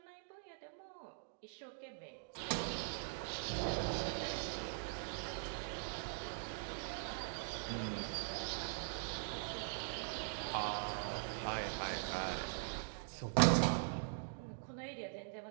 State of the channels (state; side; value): silent; left; digital silence